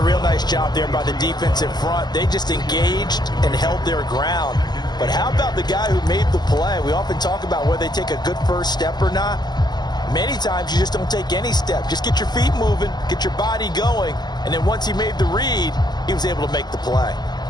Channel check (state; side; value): late; right; 0.20 ms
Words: real nice job there by the defensive front. They just engaged and held their ground. But how about the guy who made the play? We often talk about whether they take a good first step or not. Many times you just don't take any step. Just get your feet moving, get your body going, and then once he made the read, he was able to make the play.